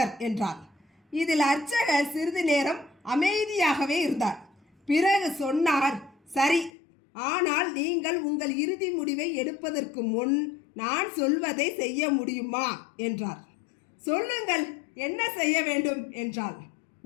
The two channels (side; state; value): right; drops out; at 6.7 s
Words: என்றார். இதில் அர்ச்சகர் சிறிது நேரம் அமைதியாகவே இருந்தார். பிறகு சொன்னார், சரி, ஆனால் நீங்கள் உங்கள் இறுதி முடிவை எடுப்பதற்கு முன் நான் சொல்வதை செய்ய முடியுமா என்றார். சொல்லுங்கள், என்ன செய்ய வேண்டும் என்றாள்.